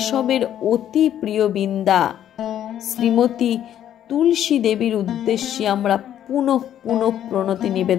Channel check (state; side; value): quieter; right; 10.8 dB